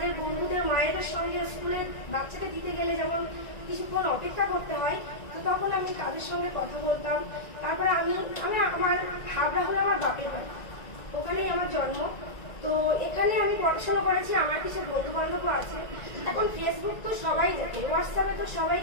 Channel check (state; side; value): late; right; 1.9 ms